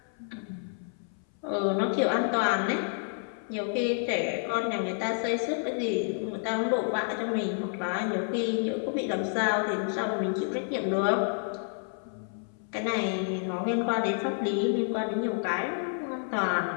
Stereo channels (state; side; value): silent; right; 58 dB below the other